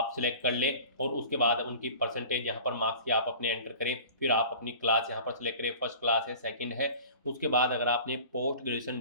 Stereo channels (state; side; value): inverted; both; correlation -0.42